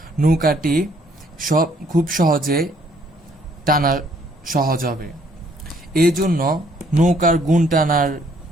নৌকাটি খুব সহজে টানা সহজ হবে। এই জন্য নৌকার গুণ টানার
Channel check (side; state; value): both; normal; correlation 0.65